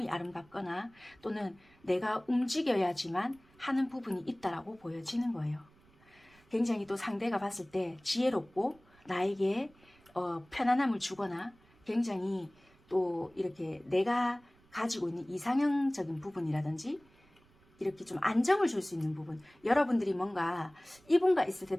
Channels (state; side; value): noise; right; rumble, 30 dB below the sound